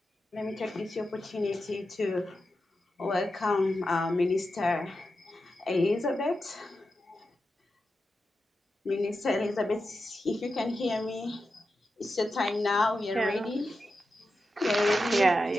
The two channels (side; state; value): both; normal; correlation 0.90